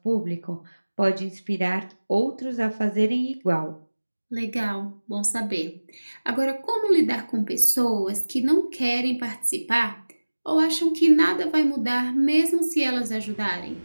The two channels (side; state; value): both; inverted; correlation -1.00